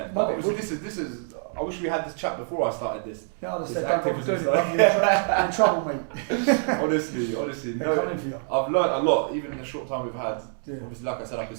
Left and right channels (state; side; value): silent; left; 61 dB below the other